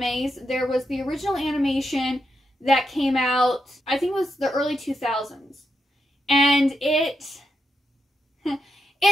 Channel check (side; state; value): both; normal; correlation 0.84